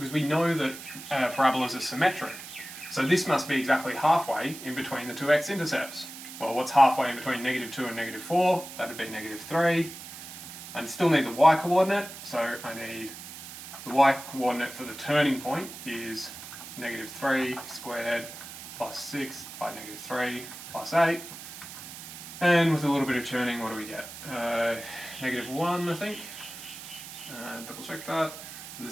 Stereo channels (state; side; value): noise; right; hiss, 12 dB below the sound